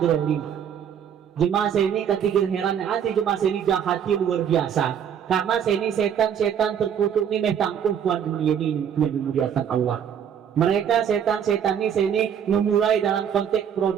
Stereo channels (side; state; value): left; quieter; 8.5 dB